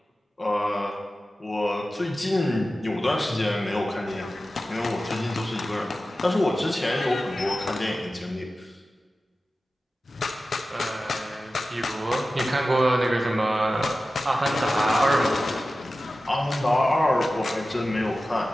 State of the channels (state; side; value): normal; both; correlation 0.95